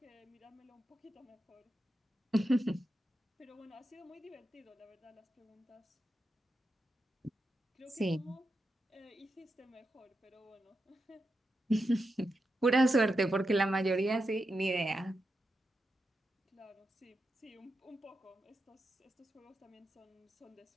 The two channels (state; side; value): normal; both; correlation 0.88